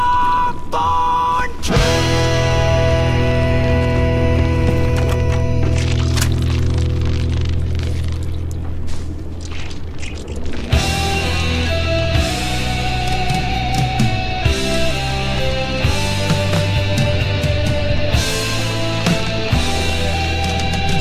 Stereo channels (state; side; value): identical; both; correlation 1.00